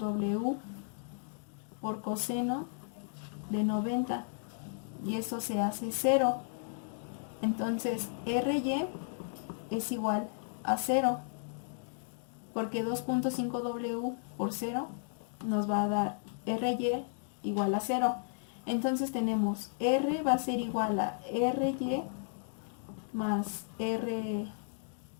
por coseno de 90, y eso se hace 0. Entonces Ry es igual a 0, porque 2.5 W por 0 nos va a dar Ry igual a 0. Entonces tenemos R va a ser igual a RY más RX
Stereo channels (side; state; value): right; silent; digital silence